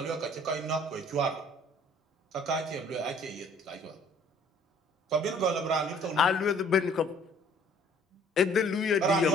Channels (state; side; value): normal; both; correlation 0.56